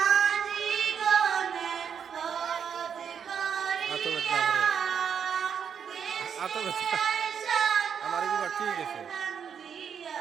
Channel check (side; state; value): left; quieter; 7.5 dB